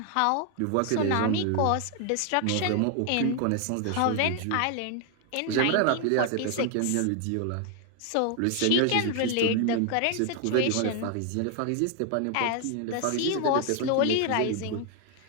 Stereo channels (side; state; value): both; different; correlation 0.00